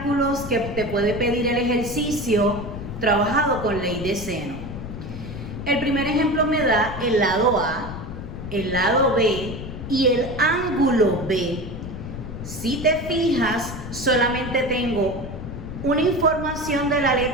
que te puede pedir el ejercicio trabajado con ley de seno. El primer ejemplo me da el lado A, el lado B y el ángulo B. Si te fijas, solamente tengo una información de la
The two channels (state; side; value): noise; left; rumble, 9 dB below the sound